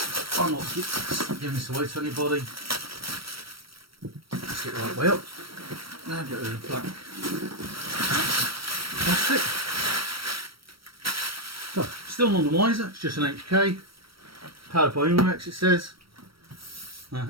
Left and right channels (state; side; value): late; left; 0.75 ms